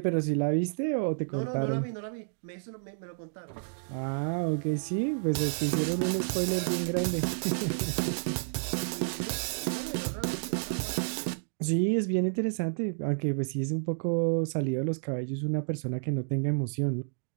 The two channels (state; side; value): silent; left; digital silence